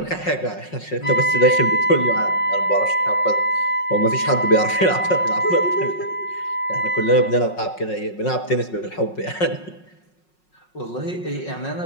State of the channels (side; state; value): right; late; 5.5 ms